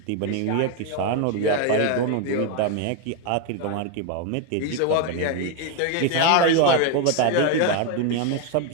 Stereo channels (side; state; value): both; different; correlation 0.01